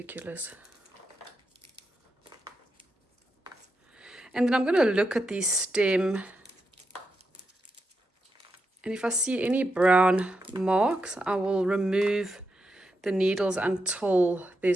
And then I'm going to look at the stem, and if I see any brown marks, I will remove the needles until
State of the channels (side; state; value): both; normal; correlation 0.85